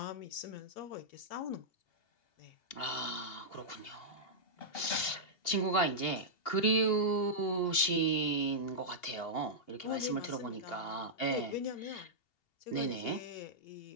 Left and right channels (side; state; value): right; late; 2.8 ms